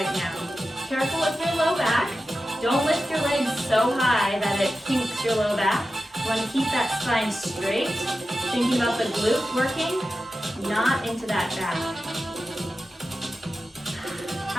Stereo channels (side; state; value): both; normal; correlation 0.93